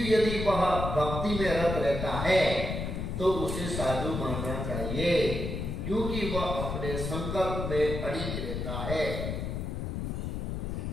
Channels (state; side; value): noise; left; rumble, 3 dB below the sound